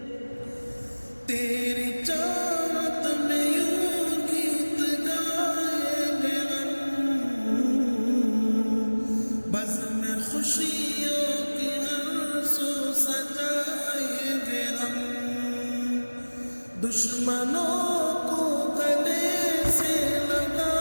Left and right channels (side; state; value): both; inverted; correlation -1.00